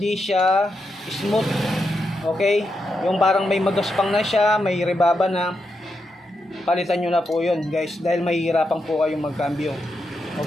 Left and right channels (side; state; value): both; normal; correlation 0.84